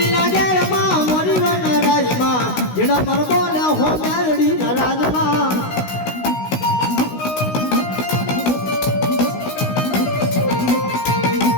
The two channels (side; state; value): right; late; 16 ms